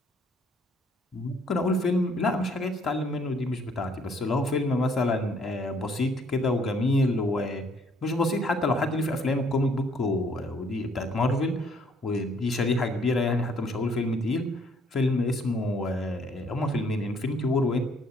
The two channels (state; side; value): normal; both; correlation 0.64